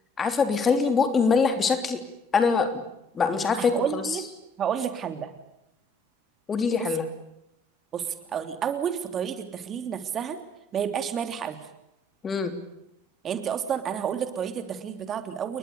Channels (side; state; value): both; normal; correlation 0.63